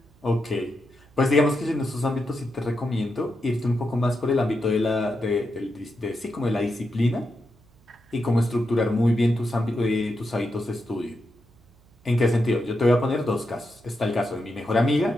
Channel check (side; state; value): right; noise; hum, 30 dB below the sound